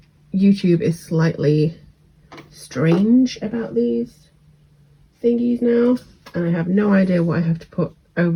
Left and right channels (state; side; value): identical; both; correlation 1.00